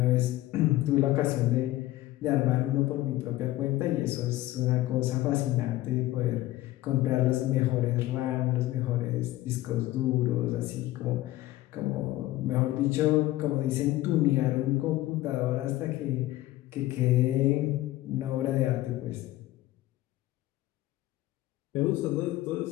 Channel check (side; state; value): right; quieter; 16.3 dB